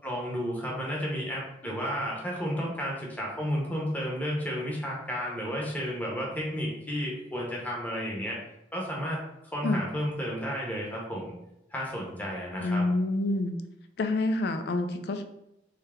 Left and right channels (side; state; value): both; normal; correlation 0.68